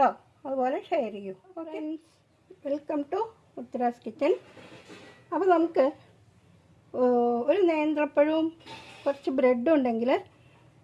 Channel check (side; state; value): both; identical; correlation 1.00